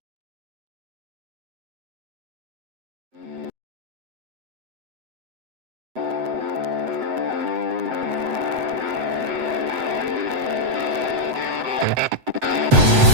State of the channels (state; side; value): late; left; 7.9 ms